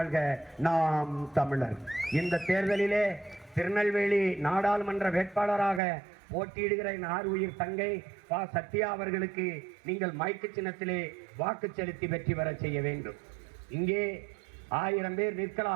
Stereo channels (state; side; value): drops out; left; at 5.8 s